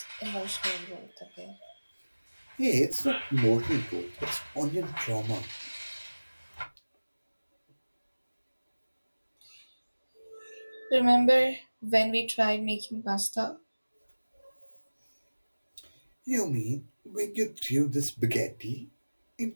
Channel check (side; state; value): both; inverted; correlation -1.00